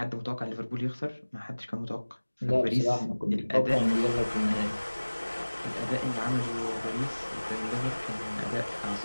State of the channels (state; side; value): inverted; both; correlation -1.00